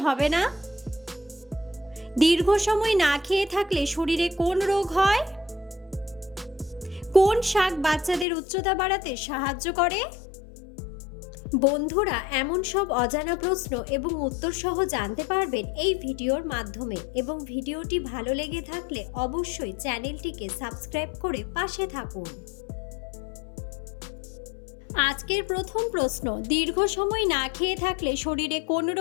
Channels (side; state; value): right; drops out; at 8.2 s